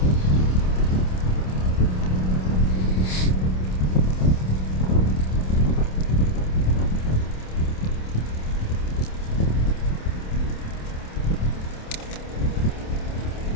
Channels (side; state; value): right; late; 27 ms